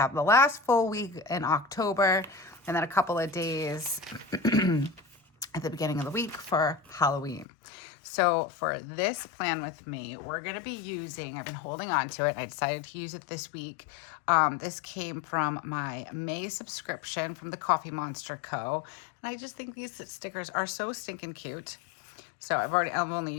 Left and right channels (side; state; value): right; drops out; at 7.5 s